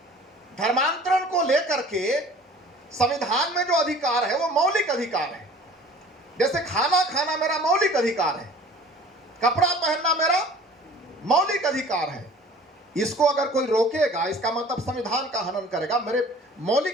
धर्मांतरण को लेकर के संविधान में जो अधिकार है वो मौलिक अधिकार है। जैसे खाना खाना मेरा मौलिक अधिकार है, कपड़ा पहनना मेरा मौलिक अधिकार है। इसको अगर कोई रोकेगा, इसका मतलब संविधान का हनन करेगा, मेरे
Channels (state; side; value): normal; both; correlation 0.47